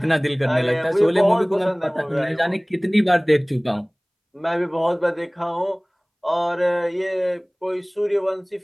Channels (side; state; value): both; identical; correlation 1.00